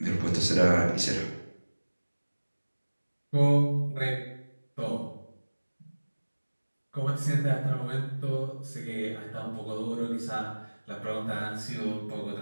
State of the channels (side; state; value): both; inverted; correlation -1.00